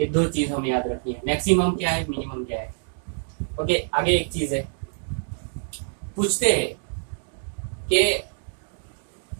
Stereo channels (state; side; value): silent; left; digital silence